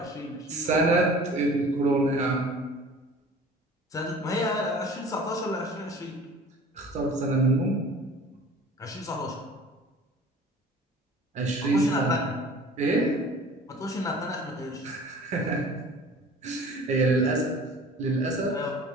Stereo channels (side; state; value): both; normal; correlation 0.45